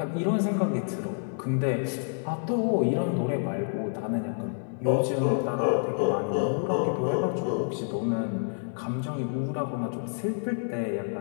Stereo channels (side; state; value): right; silent; digital silence